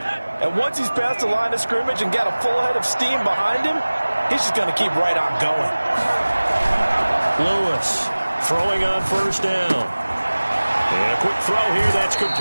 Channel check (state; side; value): inverted; both; correlation -1.00